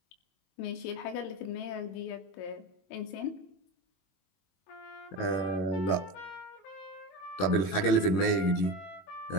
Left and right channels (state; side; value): late; right; 22 ms